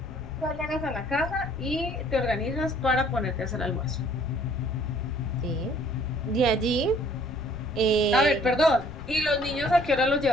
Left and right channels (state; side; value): noise; left; rumble, 15 dB below the sound